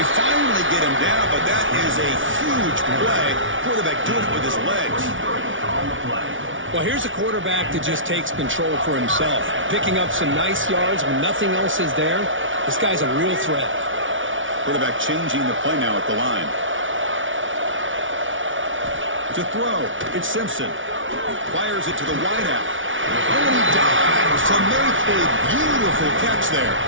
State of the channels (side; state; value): left; late; 0.57 ms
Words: finally get him down, but that is a huge play. Quarterback doing it with his legs. Well, here's a quarterback that just takes control for himself. Picking up some nice yards when nothing else is there. This guy's a real threat. Quarterback changing the play now at the line. To throw, it's Simpson. Fires it to the wideout. Oh, and he dives to make a beautiful catch there.